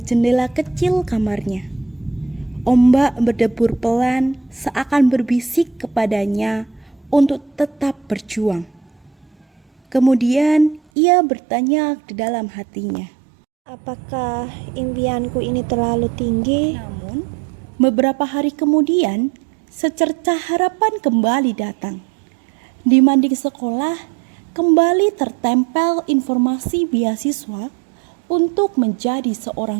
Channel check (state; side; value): drops out; left; at 10.8 s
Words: kecil kamarnya. Ombak berdebur pelan seakan berbisik kepadanya untuk tetap berjuang. Kemudian ia bertanya di dalam hatinya. Apakah impianku ini terlalu tinggi? Namun, beberapa hari kemudian, secercah harapan kembali datang. Di mading sekolah, kembali tertempel informasi beasiswa untuk menjadi